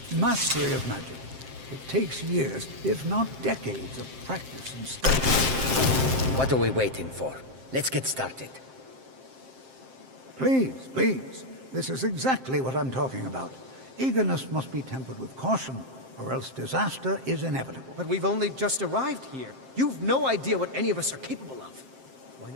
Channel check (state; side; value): late; left; 7.6 ms